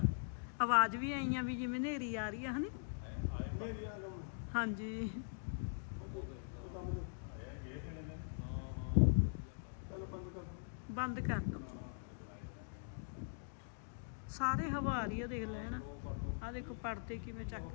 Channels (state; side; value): silent; right; digital silence